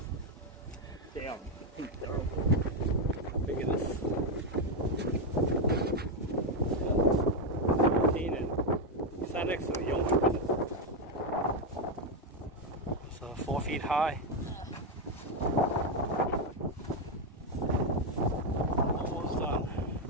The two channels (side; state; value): both; normal; correlation 0.05